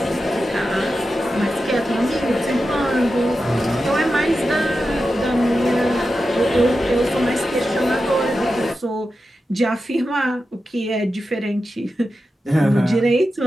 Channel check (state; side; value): normal; both; correlation 0.91